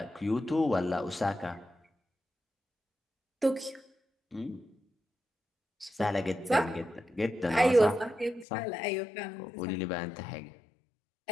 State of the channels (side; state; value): right; drops out; at 8.5 s